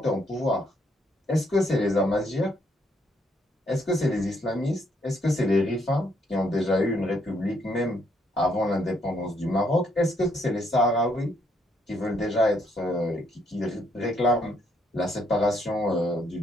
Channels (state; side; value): normal; both; correlation 0.72